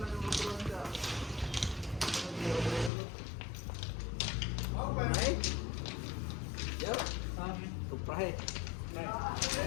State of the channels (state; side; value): drops out; right; at 2.9 s